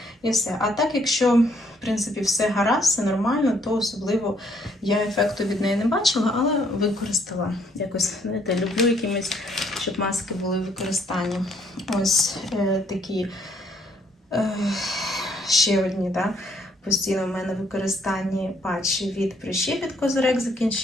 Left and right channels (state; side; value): normal; both; correlation 0.67